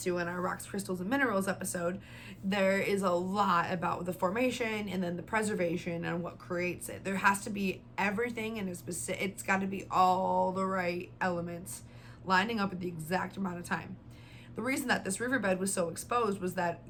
to in our rocks, crystals, and minerals episode, there is a lot about the formation and then the preservation and what creates it. There has to be everything, and it's got to be all the right elements lining up at the exact amount of time. The reason that this riverbed was so exposed was that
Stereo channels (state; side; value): identical; both; correlation 1.00